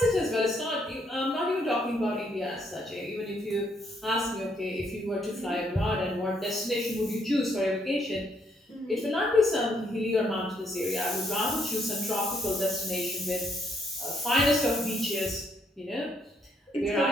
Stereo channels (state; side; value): normal; both; correlation 0.72